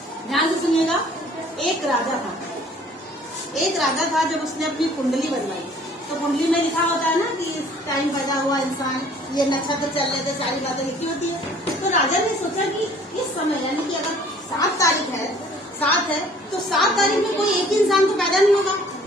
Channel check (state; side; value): normal; both; correlation 0.54